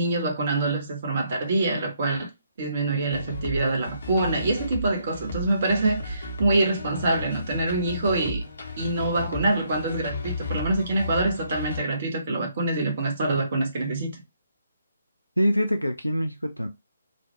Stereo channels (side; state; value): both; inverted; correlation -0.72